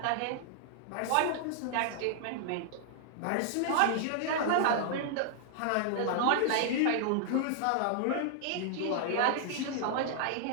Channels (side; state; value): both; different; correlation -0.01